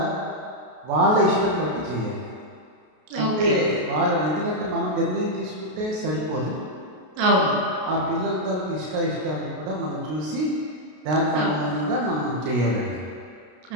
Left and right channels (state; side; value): late; left; 33 ms